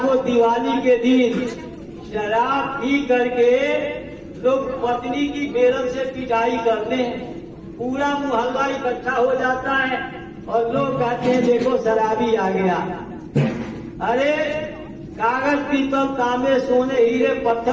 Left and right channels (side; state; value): both; identical; correlation 1.00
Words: को दिवाली के दिन शराब पी करके लोग पत्नी की बेरल से पिटाई करते हैं। पूरा मोहल्ला इकट्ठा हो जाता है और लोग कहते हैं देखो शराबी आ गया। अरे कागज, पीतल, तांबे, सोने, हीरे,